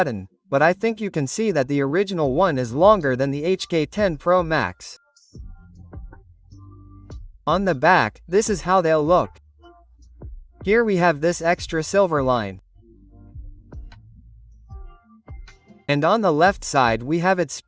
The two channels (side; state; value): both; identical; correlation 1.00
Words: but I think you can see that the original one is longer than the HK10 Pro Max. On the back, this is how they'll look. Here we have this extra silver line. And on the left side we have its